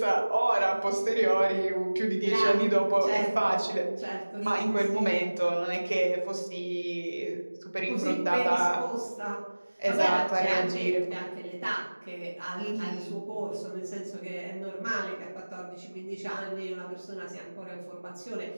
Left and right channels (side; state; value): both; inverted; correlation -1.00